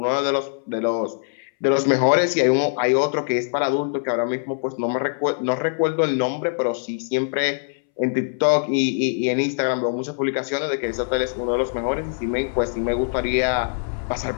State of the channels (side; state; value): right; silent; 64 dB below the other